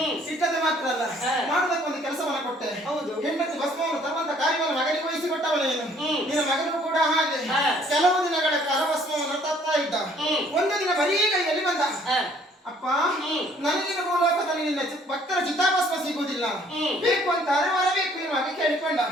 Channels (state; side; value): normal; both; correlation 0.60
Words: ಇಟ್ಟದೆ ಮಾತ್ರ ಅಲ್ಲ, ಮಾಡುವುದಕ್ಕೆ ಒಂದು ಕೆಲಸವನ್ನು ಕೊಟ್ಟೆ. ಹೌದು, ಹೆಂಡತಿ ಭಸ್ಮವನ್ನು ತರುವಂತ ಕಾರ್ಯವನ್ನು ಮಗನಿಗೆ ವಹಿಸಿಕೊಟ್ಟವ ನೀನು. ನಿನ್ನ ಮಗನು ಕೂಡ ಹಾಗೆ ಕೆಲವು ದಿನಗಳ ಕಾಲ ಭಸ್ಮವನ್ನು ತರ್ತಾ ಇದ್ದ. ಒಂದು ದಿನ ಬರೀ ಕೈಯಲ್ಲಿ ಬಂದ. ಅಪ್ಪ, ನನಗಿನ ಮೂಲಕದಲ್ಲಿ ನಿನ್ನ ಭಕ್ತರ ಚಿತಾಭಸ್ಮ ಸಿಗುವುದಿಲ್ಲ, ಬೇಕು ಅಂತ ಅರವರಬೇಕು ಎನ್ನುವಾಗ ಕೇಳಿಕೊಂಡ.